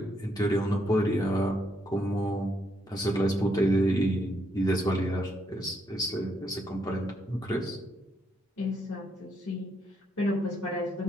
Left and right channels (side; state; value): both; normal; correlation 0.76